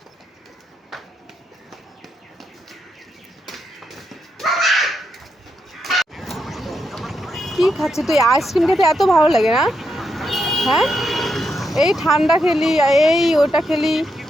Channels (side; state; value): both; normal; correlation 0.82